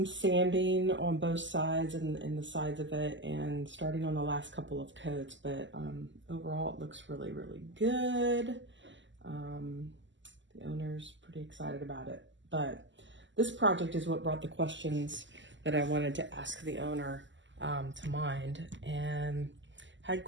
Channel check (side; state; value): left; late; 0.54 ms